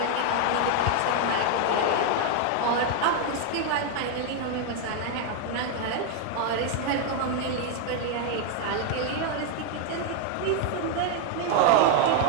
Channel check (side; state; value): both; different; correlation 0.00